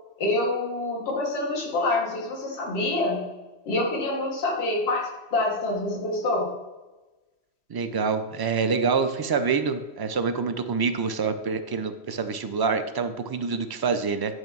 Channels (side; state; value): right; late; 3.1 ms